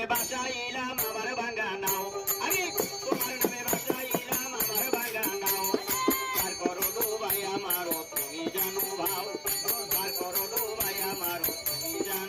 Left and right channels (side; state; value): both; identical; correlation 1.00